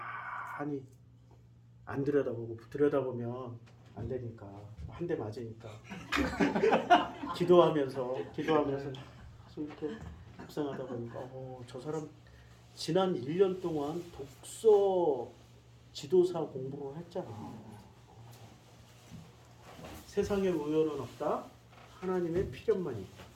안 들여다보면 안 되니까 한 대 맞으니까 기도하면서 이렇게 묵상하다 보니까 저 사람 지난 1년 동안 독서 지도사 공부를 했잖아. 세상에 우연은 없다. 하나님의 필연만이 있다.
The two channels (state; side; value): identical; both; correlation 1.00